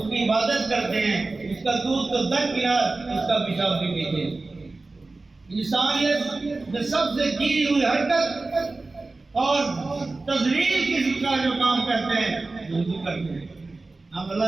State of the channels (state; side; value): quieter; left; 3.4 dB